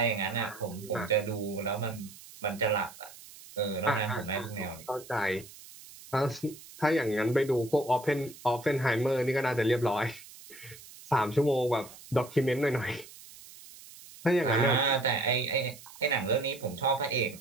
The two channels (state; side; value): noise; right; hiss, 19 dB below the sound